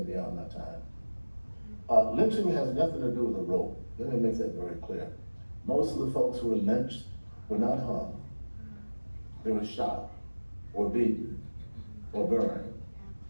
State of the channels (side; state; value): both; inverted; correlation -1.00